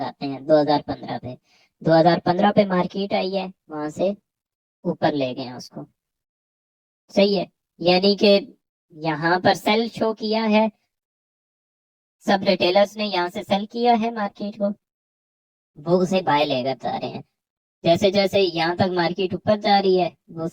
हैं 2015 पे। 2015 पे मार्केट आई है, वहां से ऊपर ले गए हैं उसको, सही है। यानी कि यहाँ पर सेल शो किया है, सब रिटेलर्स ने यहाँ से सेल किया है मार्केट को, वो उसे बाय लेकर जा रहे हैं। जैसे जैसे यहाँ तक मार्केट ऊपर जा रही है, वो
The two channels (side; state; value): both; identical; correlation 1.00